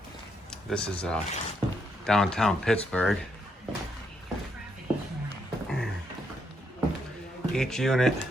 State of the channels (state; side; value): normal; both; correlation 0.76